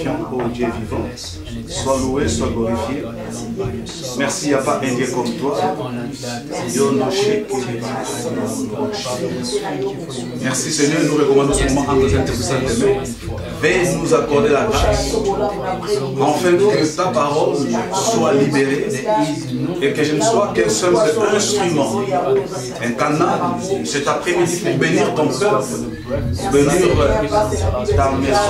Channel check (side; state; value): both; identical; correlation 1.00